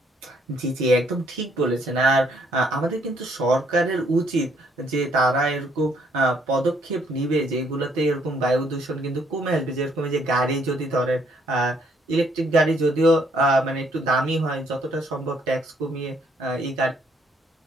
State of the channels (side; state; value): both; normal; correlation 0.68